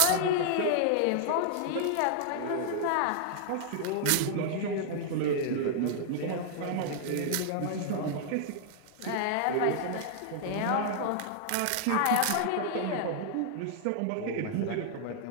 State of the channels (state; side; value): different; both; correlation -0.01